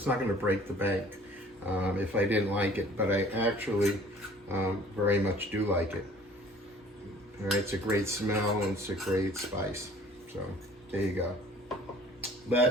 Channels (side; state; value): both; normal; correlation 0.52